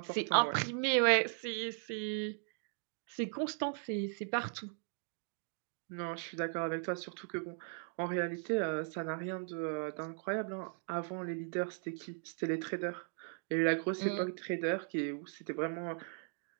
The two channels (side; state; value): left; silent; 52 dB below the other